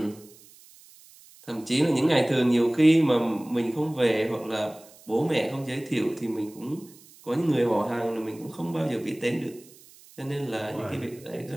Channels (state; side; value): noise; right; hiss, 24 dB below the sound